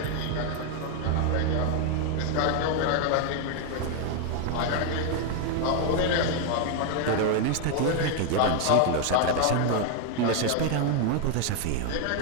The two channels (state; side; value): different; both; correlation 0.01